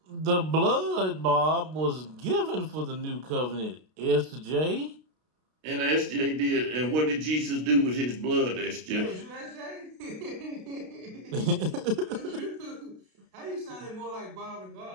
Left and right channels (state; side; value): late; left; 32 ms